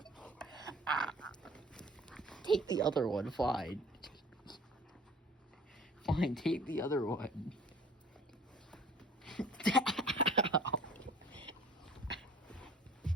Take the other one, fine. Fine, take the other one.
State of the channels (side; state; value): both; normal; correlation 0.49